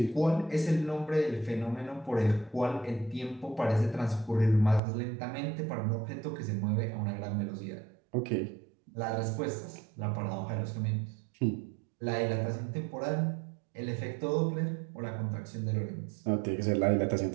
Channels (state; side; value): drops out; left; at 4.8 s